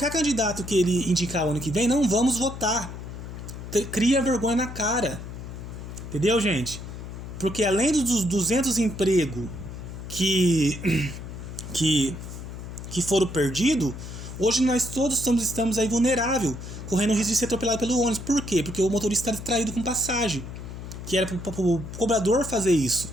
candidato que ele indicar o ano que vem, não vamos votar. Cria vergonha na cara. Entendeu, gente? Porque além dos 200 empregos que foram perdidos, hoje nós todos estamos aí vulneráveis, correndo o risco de ser atropelado pelo ônibus. Por quê? Porque o motorista está distraído com passagem, que era para o cobrador fazer isso.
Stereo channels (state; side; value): noise; left; hum, 10 dB below the sound